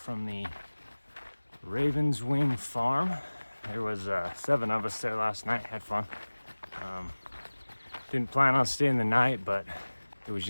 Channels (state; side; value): inverted; both; correlation -1.00